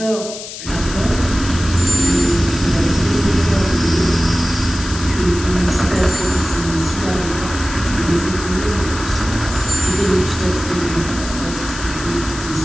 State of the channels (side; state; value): left; noise; hiss, 10 dB below the sound